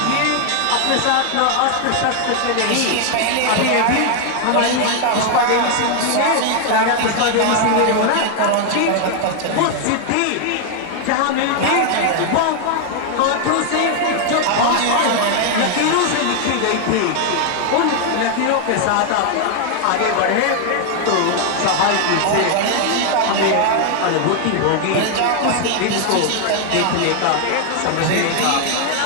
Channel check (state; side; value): different; both; correlation 0.00